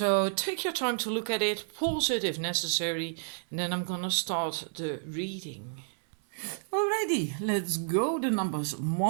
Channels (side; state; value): left; silent; 57 dB below the other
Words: take your time to look at it, pause it if necessary, and then I'm gonna start the reading. Alrighty, let's go. The numbers